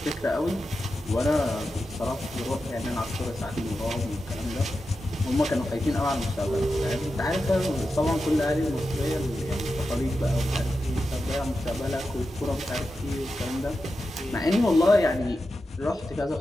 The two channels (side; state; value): both; normal; correlation 0.90